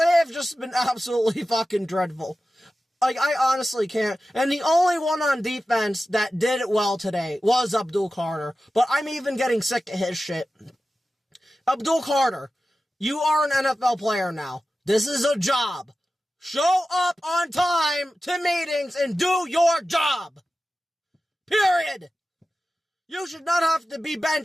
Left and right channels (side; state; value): both; normal; correlation 0.94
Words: have just been absolutely fucking dreadful. Like, I honestly can't. And the only one on defense that did it well today was Abdul Carter. But I'm even getting sick of his shit. Abdul Carter, you are an NFL player now. This is a job. Show up on time to meetings and do your job. Period. You should not have to be